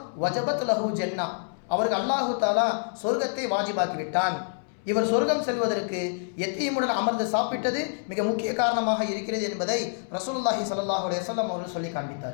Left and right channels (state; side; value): silent; right; 60 dB below the other